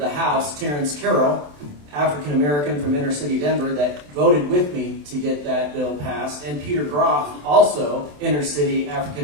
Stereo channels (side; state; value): left; late; 27 ms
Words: House, Terrence Carroll, African American from inner city Denver, that voted with me to get that bill passed, and Peter Groff, also inner city